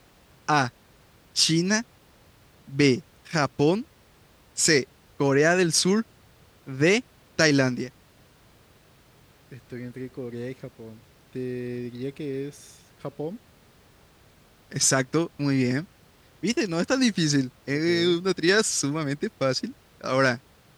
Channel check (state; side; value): identical; both; correlation 1.00